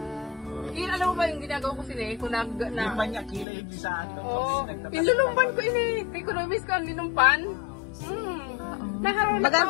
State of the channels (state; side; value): drops out; right; at 3.5 s